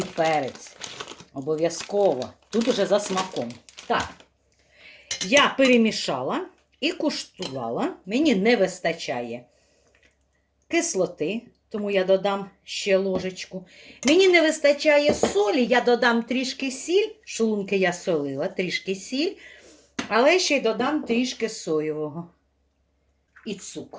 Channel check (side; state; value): both; identical; correlation 1.00